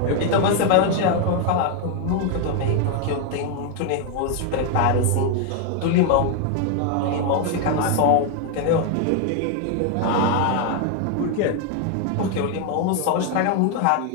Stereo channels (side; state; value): both; different; correlation 0.01